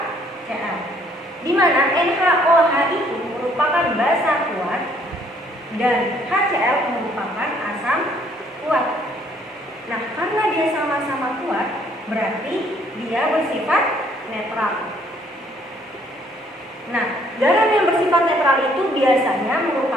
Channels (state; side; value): normal; both; correlation 0.64